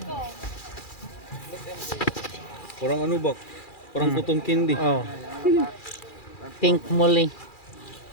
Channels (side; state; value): right; late; 2.4 ms